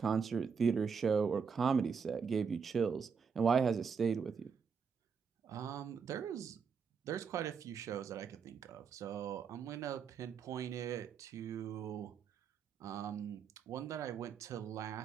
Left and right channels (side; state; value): left; quieter; 6.2 dB